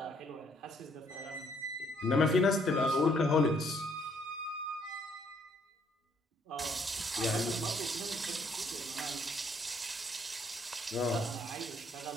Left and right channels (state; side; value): normal; both; correlation 0.67